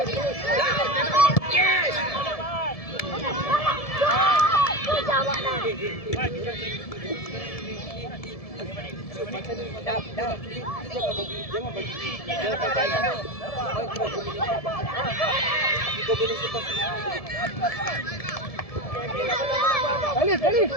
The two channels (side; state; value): right; late; 1.7 ms